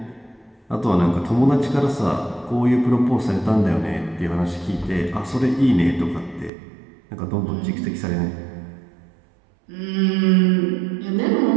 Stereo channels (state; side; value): drops out; left; at 6.5 s